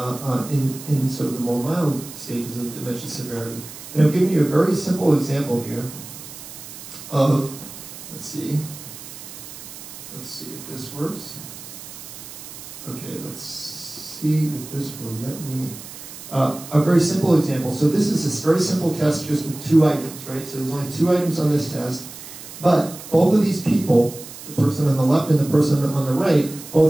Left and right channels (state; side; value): noise; right; hiss, 14 dB below the sound